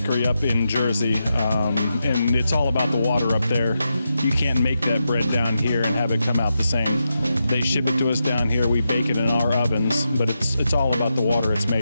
up in Jersey, and it's all about the water up there. You can't make that bread down here and have it come out the same. They ship it to us down here, we bake it in our ovens, but it's all about the water it's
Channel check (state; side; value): inverted; both; correlation -0.87